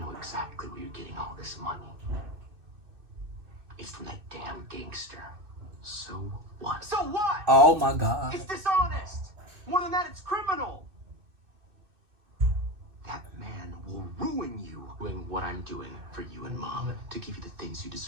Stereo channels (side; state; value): left; late; 2.6 ms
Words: exactly where you're getting all this money. It's from that damn gangster. So what? So what? Oh my god. It's dishonest. More than that, it's criminal. That man will ruin you doing what I'm doing for you and Mom to give you the things you